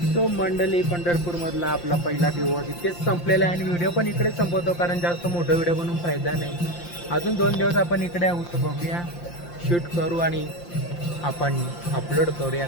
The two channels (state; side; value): late; right; 5.8 ms